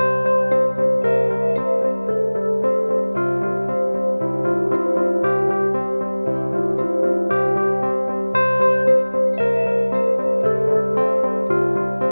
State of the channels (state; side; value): inverted; both; correlation -1.00